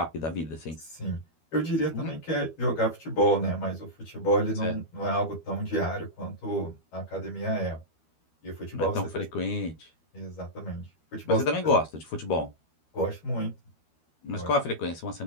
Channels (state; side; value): late; right; 12 ms